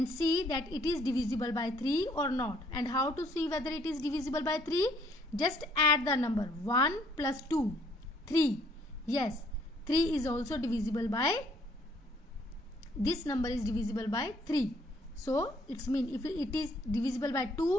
see that it is divisible by 3 or not. And how to see whether it is divisible by 3? Just add the number 1 plus 2, 3. Yes, 3 is also divisible by, this number is divisible by 3. So it's mean if it is divisible by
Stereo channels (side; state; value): both; normal; correlation 0.64